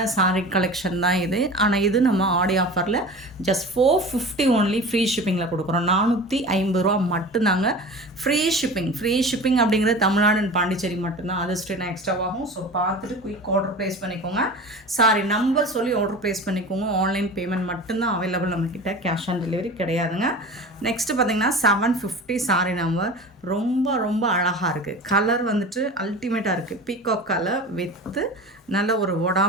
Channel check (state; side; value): normal; both; correlation 0.35